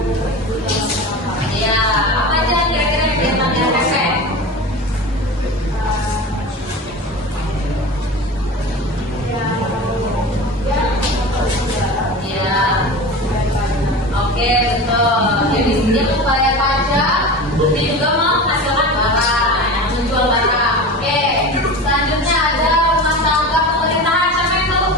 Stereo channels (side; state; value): both; normal; correlation 0.31